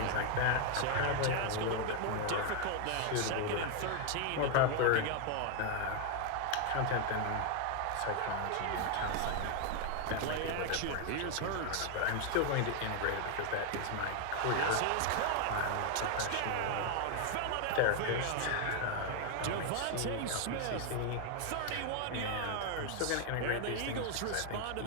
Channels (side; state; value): both; different; correlation 0.00